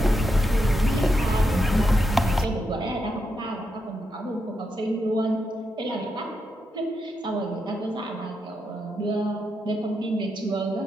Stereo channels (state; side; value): normal; both; correlation 0.83